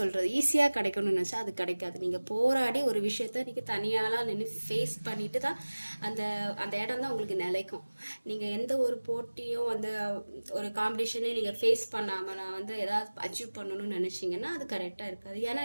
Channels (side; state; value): both; inverted; correlation -1.00